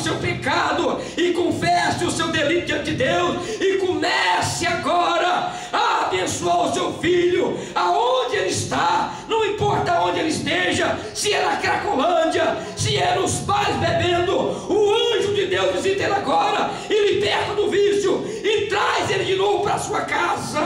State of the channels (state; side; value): identical; both; correlation 1.00